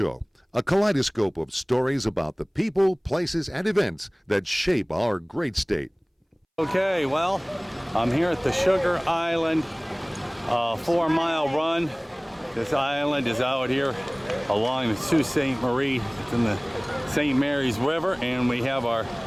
a kaleidoscope of stories about the people, places, and events that shape our great state. Okay, well, I'm here at the Sugar Island 4-mile run. This island is out here along the Sault Ste. Marie. It's in the St. Mary's River, and we have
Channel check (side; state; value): both; identical; correlation 1.00